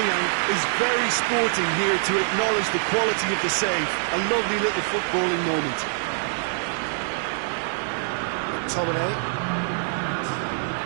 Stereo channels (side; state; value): left; silent; 62 dB below the other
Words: is very sporting here to acknowledge the quality of the save. A lovely little footballing moment. McTominay.